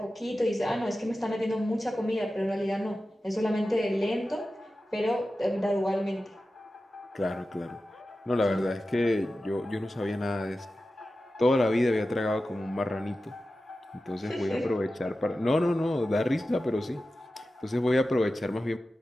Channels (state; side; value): normal; both; correlation 0.94